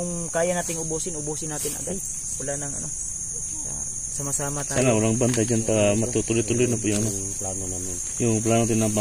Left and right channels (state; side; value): identical; both; correlation 1.00